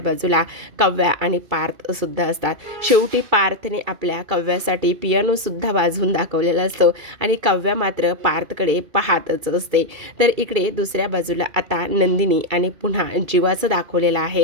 बाजूला काव्या आणि पार्थसुद्धा असतात. शेवटी पार्थने आपल्या काव्यासाठी पियानोसुद्धा वाजवून दाखवलेला असतो आणि काव्या मात्र पार्थकडे पाहतच असते. तर इकडे दुसऱ्या बाजूला आता नंदिनी आणि पुन्हा जीवाचं दाखवलेलं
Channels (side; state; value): left; late; 2.3 ms